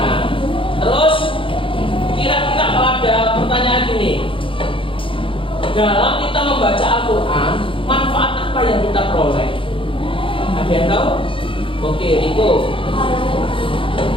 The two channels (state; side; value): late; right; 0.25 ms